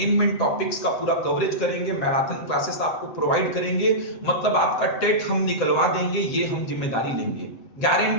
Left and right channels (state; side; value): late; right; 7.8 ms